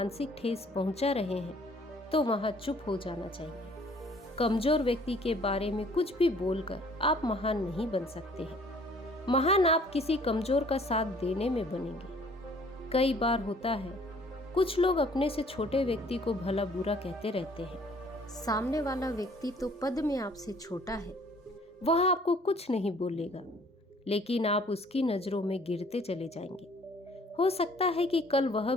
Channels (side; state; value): both; normal; correlation 0.57